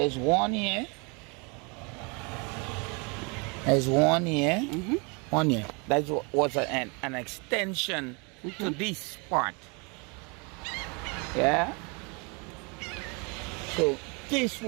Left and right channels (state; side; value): quieter; left; 31.6 dB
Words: one here. There's one here. One here. That was an extension to this part. Yeah. So this